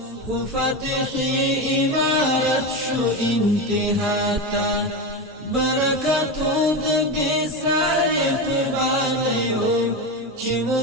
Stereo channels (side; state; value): both; normal; correlation 0.18